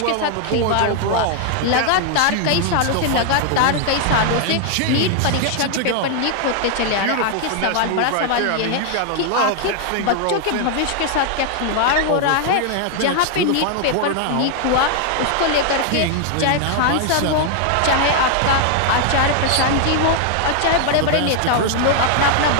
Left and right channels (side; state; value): both; different; correlation 0.00